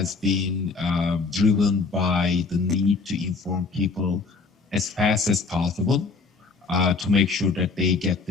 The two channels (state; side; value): quieter; right; 4.2 dB